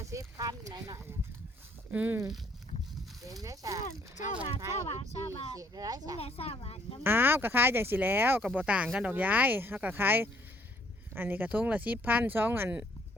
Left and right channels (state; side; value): normal; both; correlation 0.64